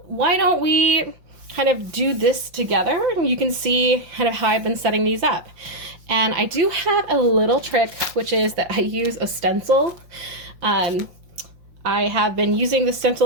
why don't we kind of do this together and you can see kind of how I've been setting these up. And I do have a little trick, which is that I use a stencil. I have been using the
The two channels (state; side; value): late; left; 5.6 ms